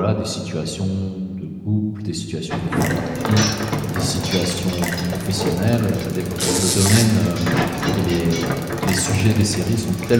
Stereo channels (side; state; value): both; identical; correlation 1.00